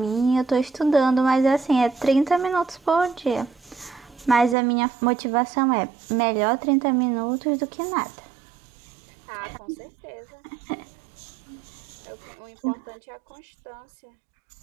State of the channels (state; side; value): drops out; left; at 4.5 s